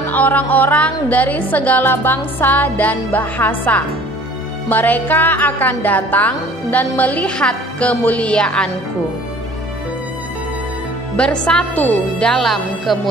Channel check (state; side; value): normal; both; correlation 0.50